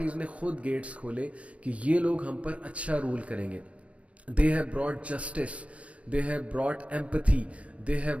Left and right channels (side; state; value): left; late; 0.063 ms